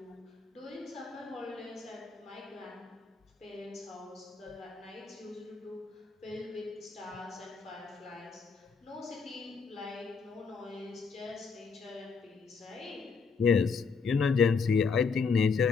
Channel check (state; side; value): quieter; right; 5.3 dB